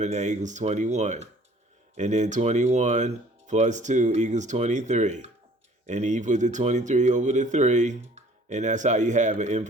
that equals 21. And then 21 plus 2 equals 23. And you put the 23 over the 3, and that's how you have an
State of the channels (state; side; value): normal; both; correlation 0.54